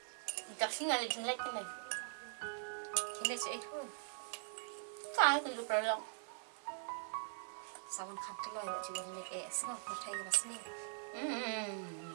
Chắc xin là chính lệch cái này. Chính là chị thôi. Cái từ lúc đó lòng. Sao vẫn khám cái lời bọn chị vẫn lệch sao có thấy cái bác sĩ.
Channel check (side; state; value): left; silent; digital silence